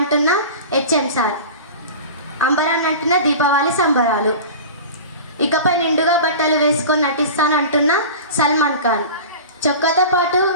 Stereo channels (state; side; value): inverted; both; correlation -0.34